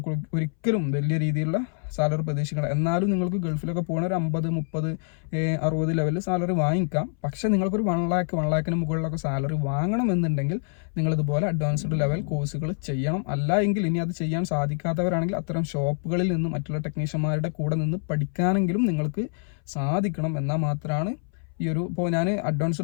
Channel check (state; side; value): silent; right; 61 dB below the other